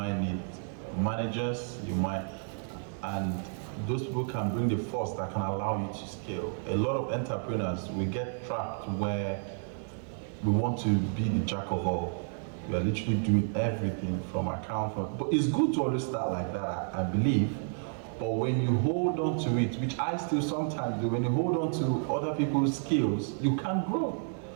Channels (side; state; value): left; silent; 57 dB below the other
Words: need managers, and those people can bring the force that can allow you to scale. A lot of entrepreneurs, we get trapped where we want to be the jack of all. We are literally doing everything from account. But it's good to always start like that, I believe. But when you hold on to it, which I still sometimes do, when you hold on to other people's skills, you can't grow.